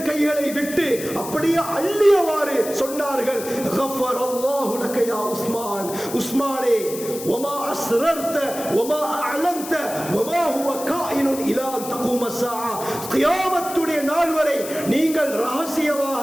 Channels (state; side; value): noise; left; hiss, 11 dB below the sound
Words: கைகளை விட்டு அப்படியே அள்ளியவாறு சொன்னார்கள், கஃபரல்லாஹு லக யா உஸ்மான், உஸ்மானே வமா அஸ்ரர்த வமா அஅலன்த வமா ஹுவ காயினுன் இலா அன் தகூம ஸஆ, கியாமத்துடைய நாள் வரை நீங்கள்